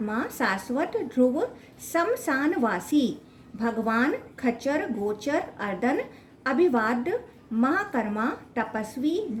शाश्वत ध्रुव शमशानवासी भगवान खच्चर गोचर अर्दन अभिवाद महाकर्मा तपस्वी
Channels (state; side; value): identical; both; correlation 1.00